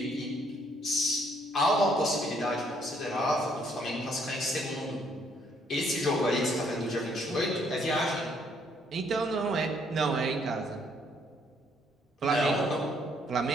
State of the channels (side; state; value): both; normal; correlation 0.68